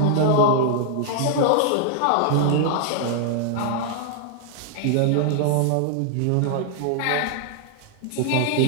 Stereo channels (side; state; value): both; different; correlation 0.00